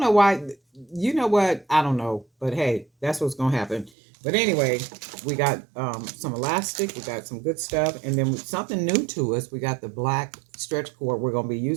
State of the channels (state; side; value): drops out; left; at 3.9 s